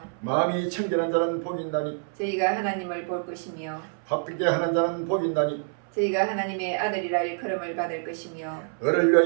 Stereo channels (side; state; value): left; silent; 60 dB below the other